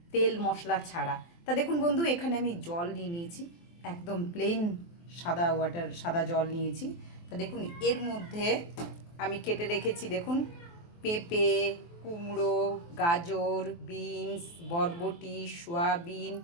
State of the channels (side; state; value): right; late; 23 ms